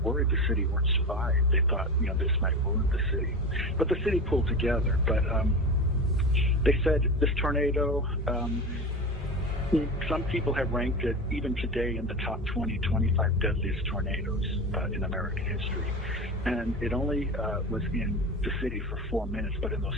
the city wouldn't survive. They thought, this might ruin the city. But the city pulled together. But they said this tornado, some people have ranked it, even today, in the top 20, 25 deadliest tornadoes in American history. And it only was in the city for 4 minutes, but in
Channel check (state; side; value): normal; both; correlation 0.27